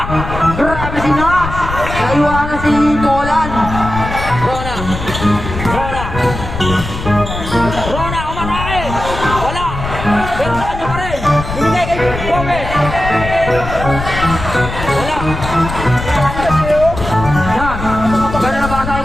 Grabe si Nash! Naiwanan si Nolan. Rona. Rona. Rona, umatake! Wala! Pero sa kanya pa rin! Binigay kay Gomez! Wala! Yan. Ganda na basa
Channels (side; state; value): left; noise; rumble, 7 dB below the sound